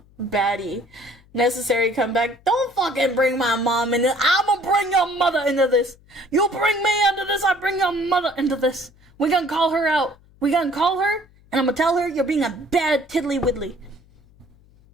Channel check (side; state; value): left; noise; hum, 29 dB below the sound